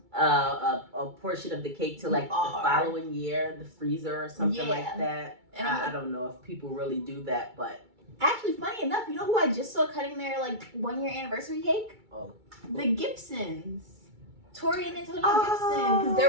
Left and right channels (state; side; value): late; left; 2.3 ms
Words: portion of the cake to the following year, the freezer or something like that. And I don't know if people really do that, but actually, funny enough, you know who I just saw cutting their 1-year anniversary cake? Oh, the Gibsons. Tori and Antonio Gibson, because